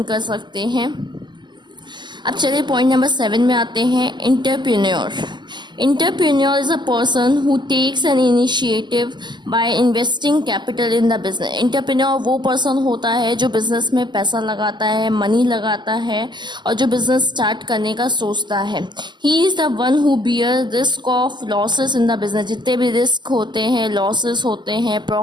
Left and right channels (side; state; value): left; late; 0.21 ms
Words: कर सकते हैं. अब चलिए पॉइंट नंबर 7 में आते हैं. Entrepreneur. Entrepreneur is a person who takes an initiative by investing capital in the business. Entrepreneur वो पर्सन होता है जो बिजनेस में पैसा लगाता है, मनी लगाता है और जो बिजनेस स्टार्ट करने का सोचता है. He is the one who bear risk of losses in the business. जितने भी रिस्क होते हैं, लॉसेस होते हैं,